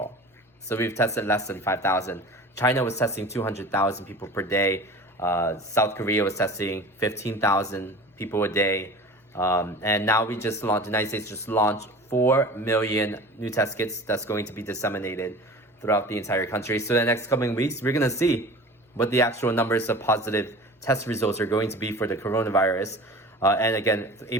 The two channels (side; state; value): both; normal; correlation 0.38